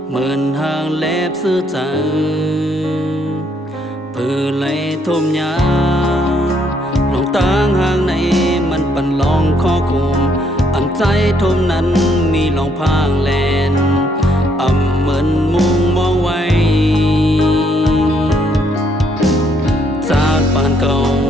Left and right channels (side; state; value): both; normal; correlation 0.70